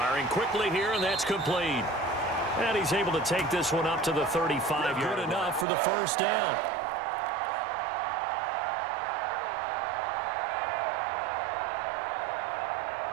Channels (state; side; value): drops out; left; at 5.7 s